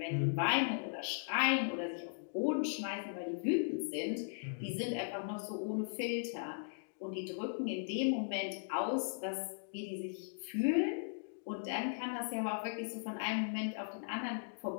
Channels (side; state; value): right; silent; digital silence